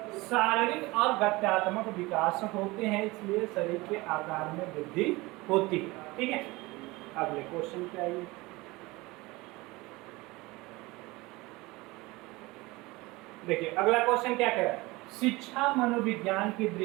शारीरिक और गत्यात्मक विकास होते हैं, इसलिए शरीर के आकार में वृद्धि होती है। ठीक है, अगले क्वेश्चन पे आइए। देखिए अगला क्वेश्चन क्या कह रहा है? शिक्षा मनोविज्ञान की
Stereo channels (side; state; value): left; quieter; 22.1 dB